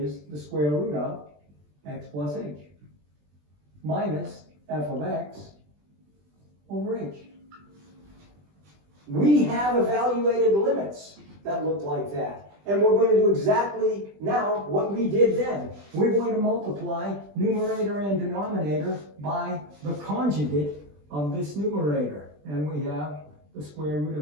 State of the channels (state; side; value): late; left; 20 ms